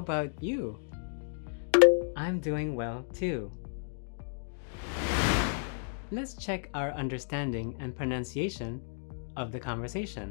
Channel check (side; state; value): right; silent; digital silence